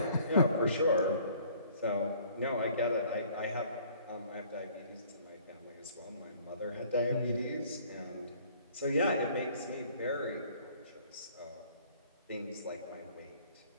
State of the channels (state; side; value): inverted; both; correlation -0.56